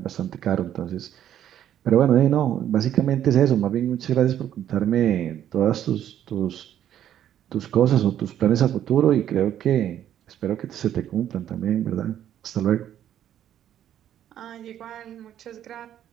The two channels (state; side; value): quieter; left; 10.8 dB